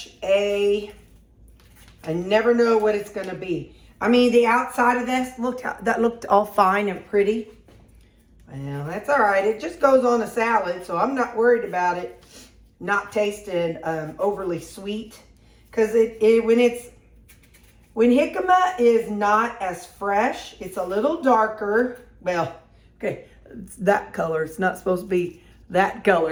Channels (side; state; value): both; identical; correlation 1.00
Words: a, I never know what it's going to be. I mean, the outside of this that looked all fine and pretty. Well, that's all right. It just goes on a salad, so I'm not worried about it not tasting overly sweet. Because when jicama is not as fresh, it's a little darker. Well, okay, it's that color. It's not supposed to be that